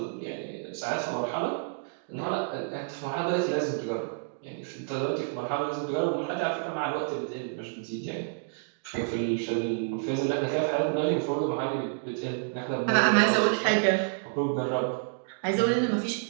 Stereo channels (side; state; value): left; silent; digital silence